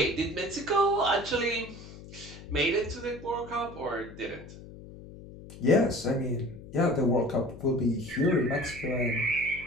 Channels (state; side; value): noise; left; hum, 16 dB below the sound